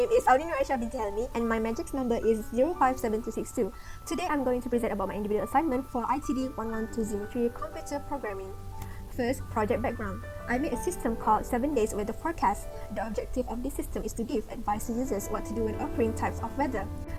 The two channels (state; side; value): identical; both; correlation 1.00